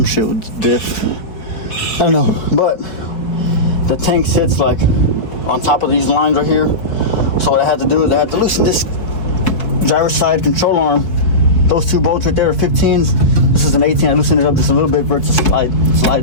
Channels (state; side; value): late; right; 4.8 ms